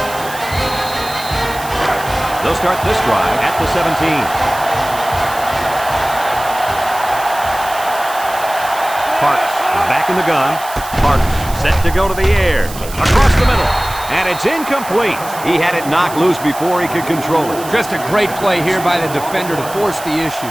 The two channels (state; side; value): noise; right; hiss, 14 dB below the sound